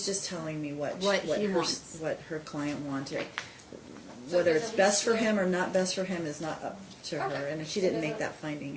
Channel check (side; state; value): both; identical; correlation 1.00